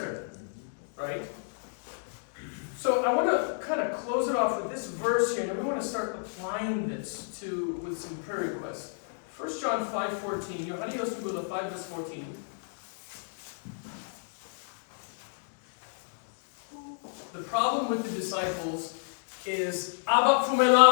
Right? So I want to kind of close it off with this verse here, and then we want to start applying this with some prayer requests. 1 John 5:14. Yohani Yosugula 5 verse 14. The problem with the disciples is Abba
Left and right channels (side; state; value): right; silent; digital silence